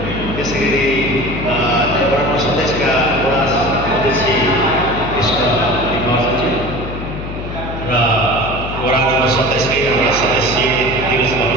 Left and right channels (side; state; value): left; noise; hum, 8 dB below the sound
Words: त्यसै गरी वडा नम्बर 27 का वडा अध्यक्ष कृष्ण महर्जनजी र वडा नम्बर 27 कै हाम्रा सदस्य दिनेश